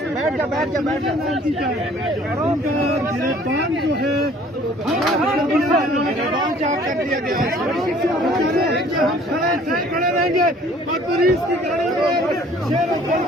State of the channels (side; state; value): both; normal; correlation 0.54